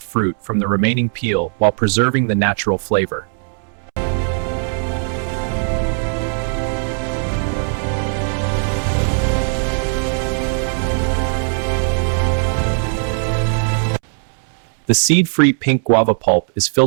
fruit from the remaining peel while preserving the natural flavor. The seed-free pink guava pulp is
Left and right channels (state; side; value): silent; left; 67 dB below the other